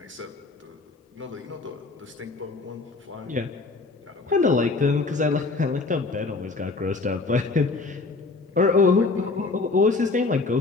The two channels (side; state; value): right; quieter; 3.8 dB